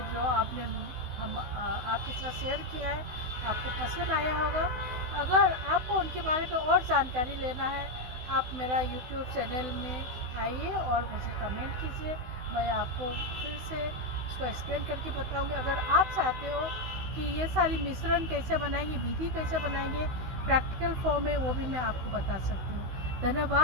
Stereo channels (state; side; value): late; left; 16 ms